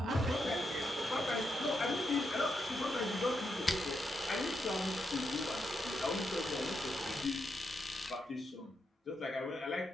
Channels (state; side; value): normal; both; correlation 0.83